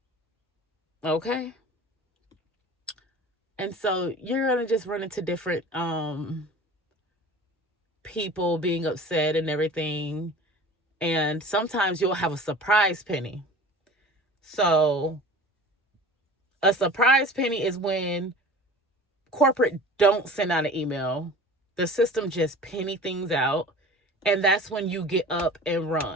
Okay. And so you're gonna just run into different people being upset and everything. And sometimes you'll have a surprise penny. So a surprise penny is when corporate don't send out an email. The system just penny things out. And that's when you get up and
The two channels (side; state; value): both; normal; correlation 0.40